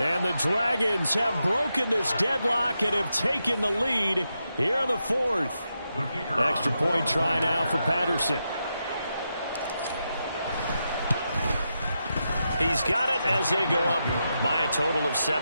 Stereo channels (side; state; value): both; inverted; correlation -0.86